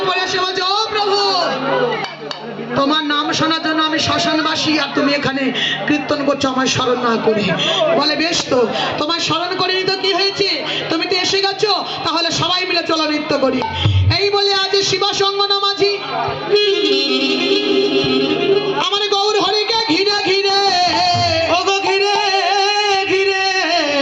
পরে এসে বলছে, ও প্রভু, তোমার নাম শোনার জন্য আমি শ্মশানবাসী, আর তুমি এখানে কীর্তন করছো আমায় স্মরণ না করে। বলে বেশ, তো তোমায় স্মরণ করিনি তো কি হয়েছে, তুমি তো এসে গেছো, তাহলে সবাই মিলে চলো নৃত্য করি। এই বলে আজ শিবাসঙ্গনা মাঝি আমার গৌর হরিকে ঘিরে ঘিরে, ওগো ঘিরে ঘিরে,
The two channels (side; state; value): both; identical; correlation 1.00